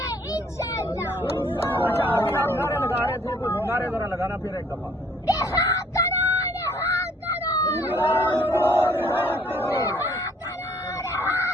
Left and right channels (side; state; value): both; normal; correlation 0.61